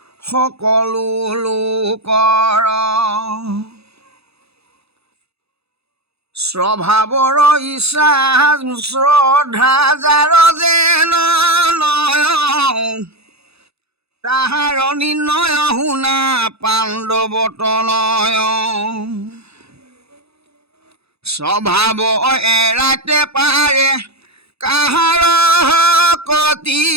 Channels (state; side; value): late; left; 0.79 ms